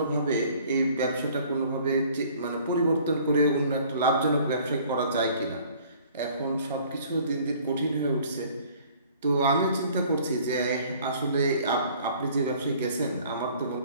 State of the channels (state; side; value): inverted; both; correlation -0.54